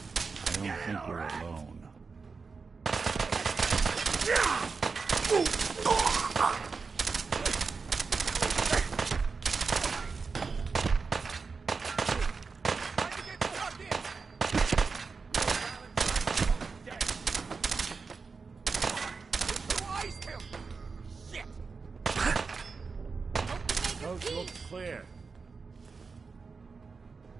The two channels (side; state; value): left; quieter; 4.8 dB